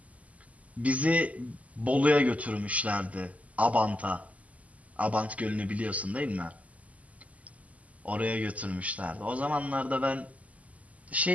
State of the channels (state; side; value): late; left; 0.072 ms